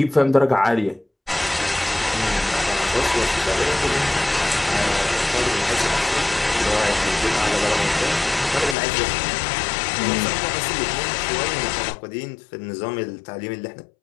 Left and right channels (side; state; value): right; drops out; at 8.8 s